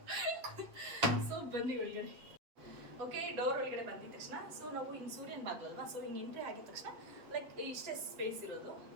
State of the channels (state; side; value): late; left; 7.8 ms